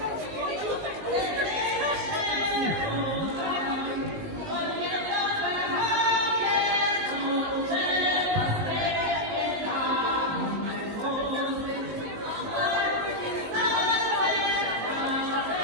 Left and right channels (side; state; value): left; late; 19 ms